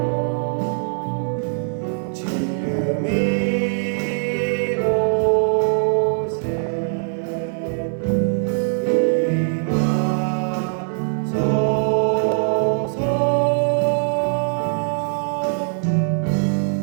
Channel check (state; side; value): silent; left; digital silence